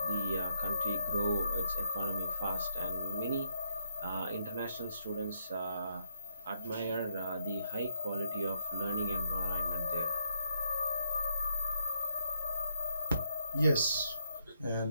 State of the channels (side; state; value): both; inverted; correlation -0.75